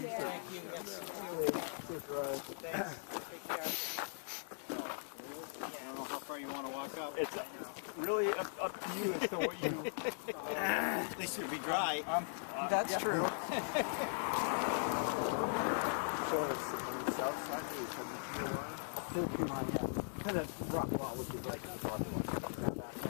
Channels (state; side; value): silent; right; digital silence